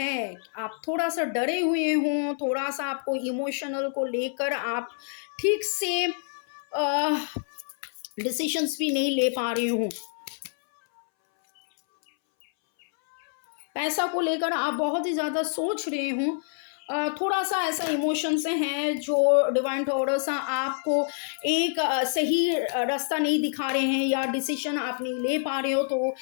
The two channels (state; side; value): silent; right; 60 dB below the other